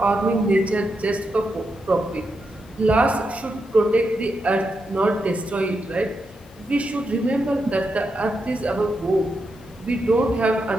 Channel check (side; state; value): both; normal; correlation 0.85